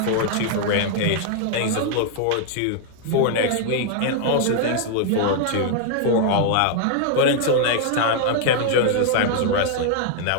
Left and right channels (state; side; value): different; both; correlation 0.00